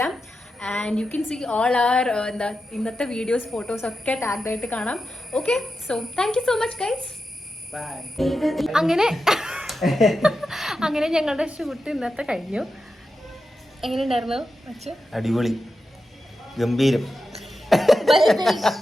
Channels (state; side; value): normal; both; correlation 0.90